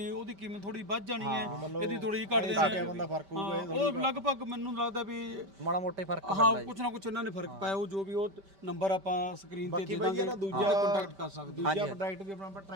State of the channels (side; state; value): left; late; 5.1 ms